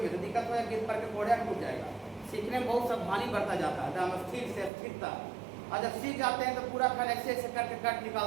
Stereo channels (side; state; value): left; drops out; at 4.7 s